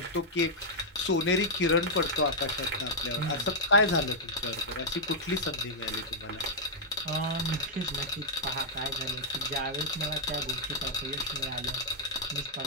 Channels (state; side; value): normal; both; correlation -0.08